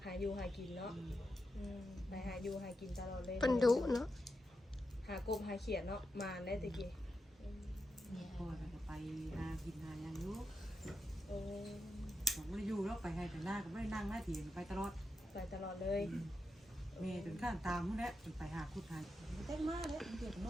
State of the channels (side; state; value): both; normal; correlation 0.87